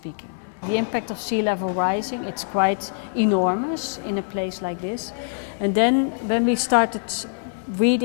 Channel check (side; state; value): right; silent; digital silence